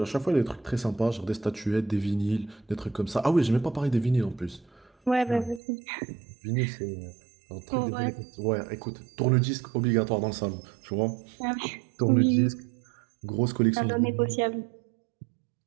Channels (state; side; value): drops out; left; at 5.6 s